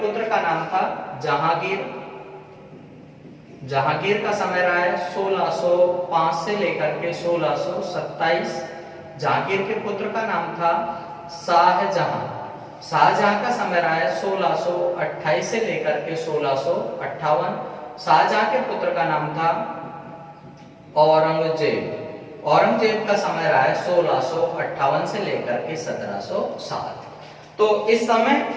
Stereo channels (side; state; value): both; identical; correlation 1.00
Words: पुत्र का नाम था जहांगीर का समय रहा है 1605 से लेकर के 1627। जहांगीर के पुत्र का नाम था शाहजहां का समय रहा है 1628 से लेकर के 1658। शाहजहां के पुत्र का नाम था औरंगजेब का समय रहा है 1658 से लेकर के 1707। तो इस समय